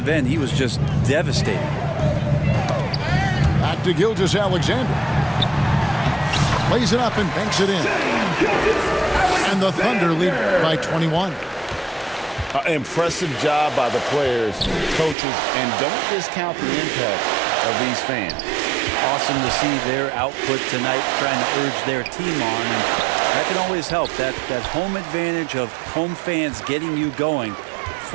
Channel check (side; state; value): left; drops out; at 15.2 s